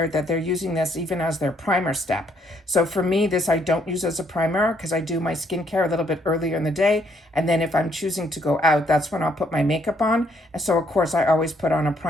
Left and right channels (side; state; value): both; normal; correlation 0.69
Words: that they're using this even as their primer step. So for me, this I don't use as a primer because I do my skincare a little bit earlier in the day. And then if I'm choosing to go out, that's when I'll put my makeup on. And so of course I always put on a